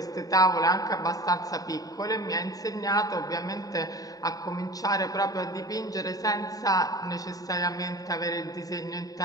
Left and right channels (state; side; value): late; right; 0.18 ms